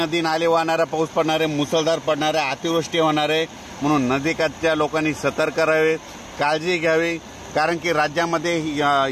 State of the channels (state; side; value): identical; both; correlation 1.00